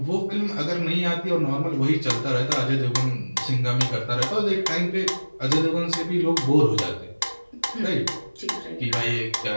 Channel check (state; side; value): inverted; both; correlation -1.00